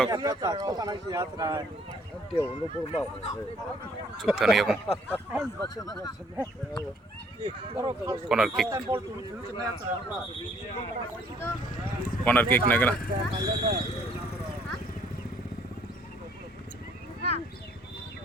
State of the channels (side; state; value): both; normal; correlation 0.63